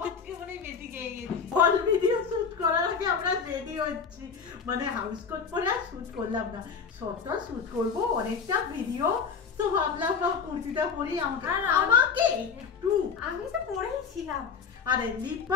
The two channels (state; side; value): quieter; right; 6.0 dB